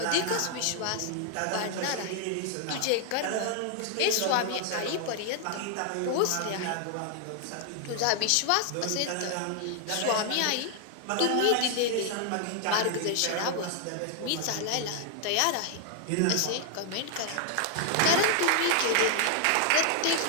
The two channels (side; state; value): both; different; correlation 0.00